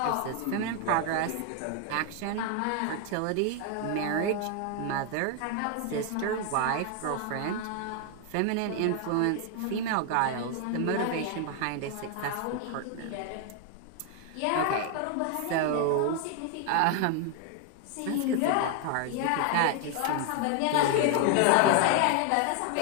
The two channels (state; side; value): different; both; correlation 0.01